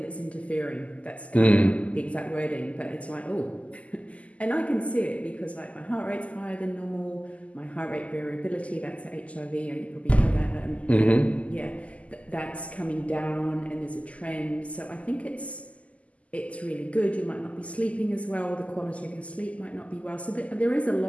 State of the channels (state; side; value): late; right; 0.066 ms